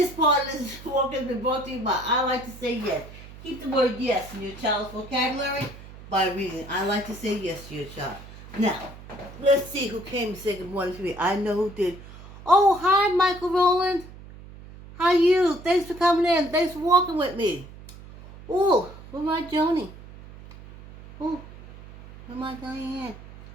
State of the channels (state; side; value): noise; right; hum, 17 dB below the sound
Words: part of this walk has been brought to you by I Like to Say Yes. Keep the word yes in your child's vocabulary by reading. I like to say yes to your child. Now, let's see who came to say good morning to me. I know who did. Oh, hi, Michael Rowland. How you? Thanks for coming in. Thanks for walking with me. Oh, where my Joni? Oh, where my Diane?